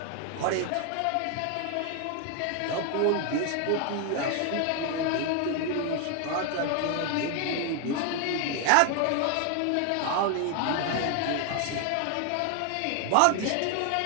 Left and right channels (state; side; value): different; both; correlation 0.01